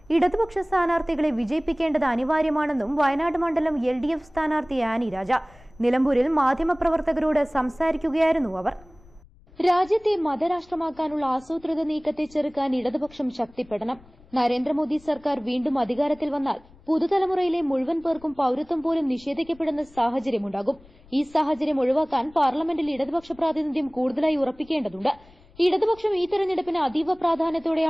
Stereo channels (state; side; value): noise; left; rumble, 26 dB below the sound